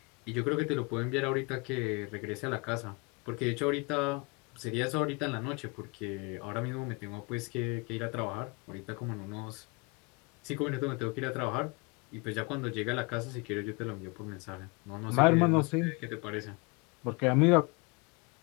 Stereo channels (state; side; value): quieter; right; 29.1 dB